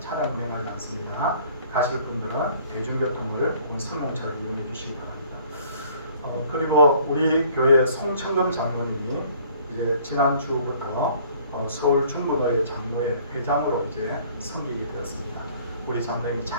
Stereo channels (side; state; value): both; inverted; correlation -0.56